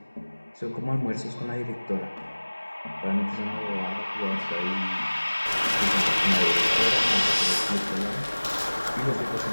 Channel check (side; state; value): both; inverted; correlation -1.00